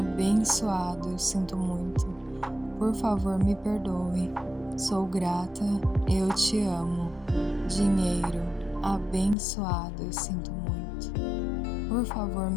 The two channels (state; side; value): drops out; right; at 9.3 s